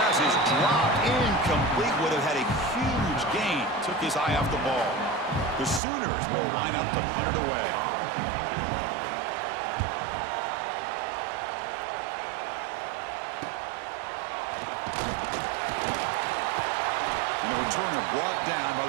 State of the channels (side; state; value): left; drops out; at 5.8 s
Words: is dropped incomplete. Would have had a huge gain. Took his eye off the ball. The Sooners will line up to punt it away. Returner brought down by